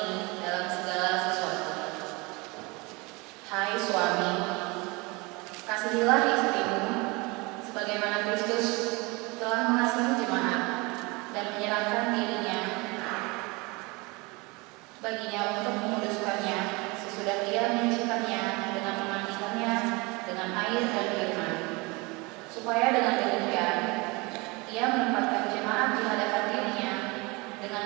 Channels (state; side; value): quieter; left; 26.1 dB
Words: dalam segala sesuatu. Hai suami, kasihilah istrimu sebagaimana Kristus telah mengasihi jemaat dan menyerahkan dirinya baginya untuk menguduskannya sesudah dia menyucikannya dengan memandikannya dengan air dan firman, supaya dengan demikian ia menempatkan jemaat di hadapan dirinya dengan